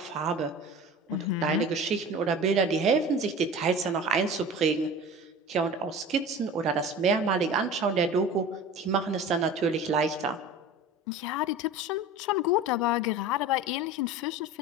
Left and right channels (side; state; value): both; normal; correlation 0.36